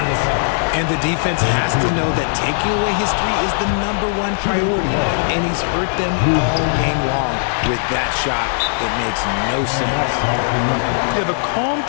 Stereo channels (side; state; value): right; silent; 64 dB below the other